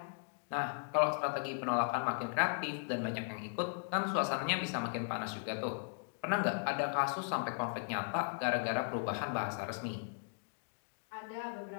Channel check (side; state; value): right; silent; digital silence